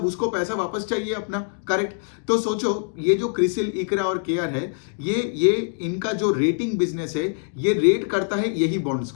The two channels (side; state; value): right; silent; 63 dB below the other